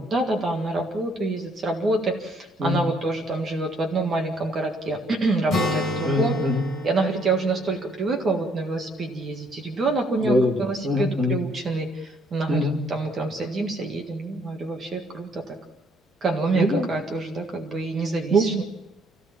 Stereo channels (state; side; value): normal; both; correlation 0.66